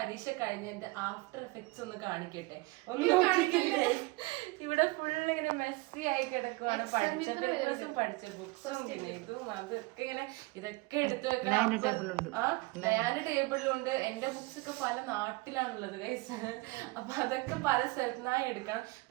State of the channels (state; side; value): quieter; left; 23.5 dB